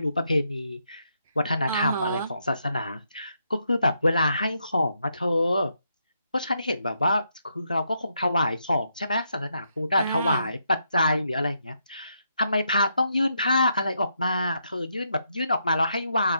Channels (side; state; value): both; inverted; correlation -0.79